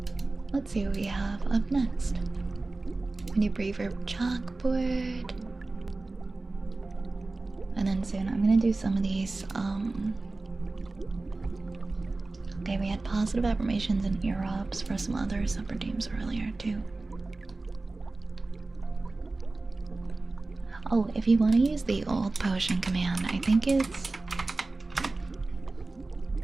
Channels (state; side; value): quieter; left; 3.3 dB